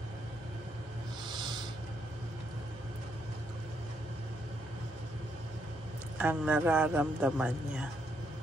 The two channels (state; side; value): normal; both; correlation 0.75